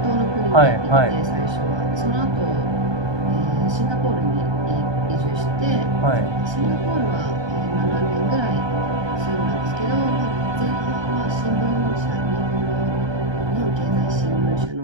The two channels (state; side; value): late; left; 1.2 ms